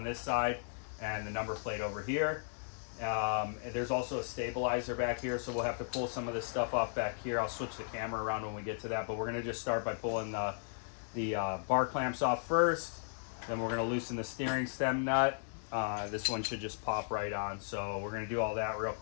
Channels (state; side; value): silent; right; digital silence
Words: this side, and the number plate over here. And there's also a stabilizer back here, so we'll have to pull some of this stuff off back here. I'll switch the camera around when we get to that, but we're going to just start by pulling the bar clamps off first. Then we're going to loosen the steering stem nut. This one should just pop right on, so we're going to do all that real